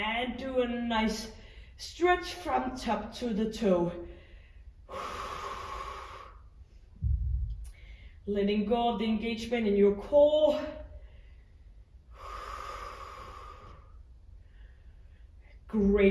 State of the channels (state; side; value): identical; both; correlation 1.00